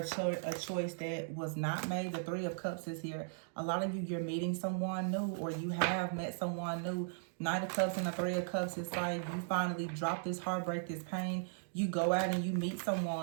choice that was not made. The Three of Cups is here. A lot of you, you're meeting someone new, or you have met someone new. Knight of Cups and the Three of Cups is like you finally drop this heartbreak, this pain. You go out and you meet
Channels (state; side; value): silent; left; digital silence